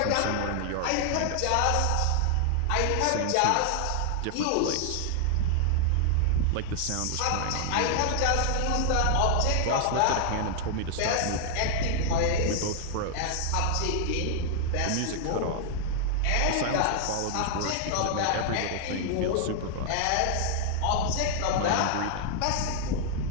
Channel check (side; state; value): both; different; correlation 0.00